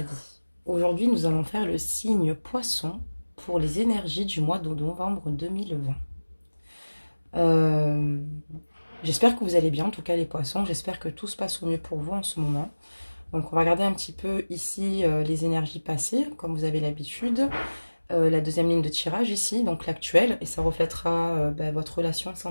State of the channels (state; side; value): inverted; both; correlation -1.00